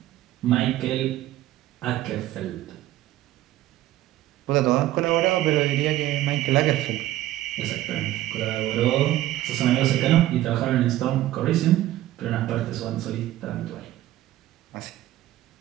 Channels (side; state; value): left; quieter; 14.6 dB